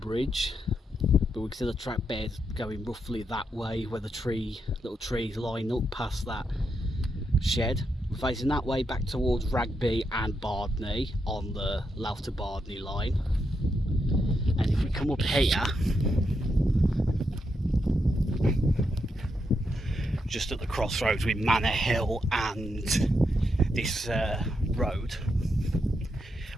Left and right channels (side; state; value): both; normal; correlation 0.82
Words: But we can see the track bed going roughly that way, where the little trees line up past that shed. We're facing that way back towards Ragby and Bardney on the Louth to Bardney line. And if we come up here, just at the crossroads with Manor Hill and this road,